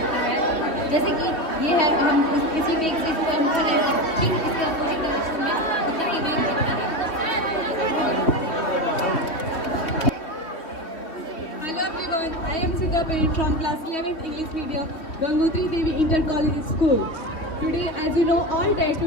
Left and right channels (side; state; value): right; late; 3.2 ms